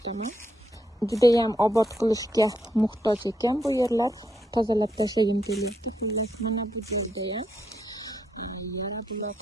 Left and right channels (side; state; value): both; normal; correlation 0.79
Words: Juda ham obod qilishga muhtoj ekan bu yerlar. Tozalab tashlagim keldi. Xullas mana bu yerda ham yara